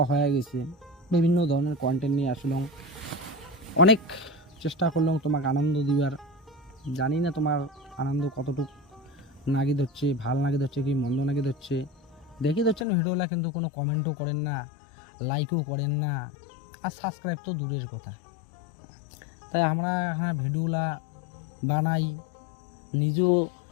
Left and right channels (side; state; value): right; drops out; at 12.9 s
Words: হয়ে গেছে। বিভিন্ন ধরনের কন্টেন্ট নিয়ে আসলাম, অনেক চেষ্টা করলাম তোমাকে আনন্দ দিবার। জানি না তোমার আনন্দ কতটুকু নাগি ধরছে, ভাল নাগি ধরছে কি মন্দ নাগি ধরছে। দেখি ধরছেন ভিডিওলা, কিন্তু কোনো কমেন্টও করেন না, লাইকও করেন না, আর সাবস্ক্রাইব তো দূরের কথা। তাই আমরা এখানে ভিডিওলা বানাই, নিজেও